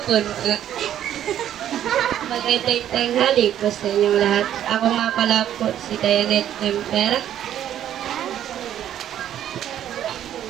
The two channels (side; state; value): left; quieter; 10.9 dB